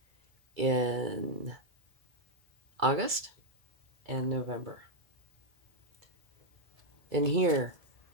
in August and November. And here,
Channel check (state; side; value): late; left; 1.9 ms